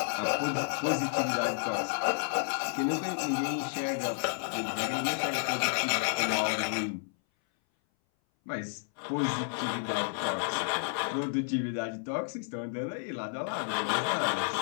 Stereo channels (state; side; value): silent; right; 57 dB below the other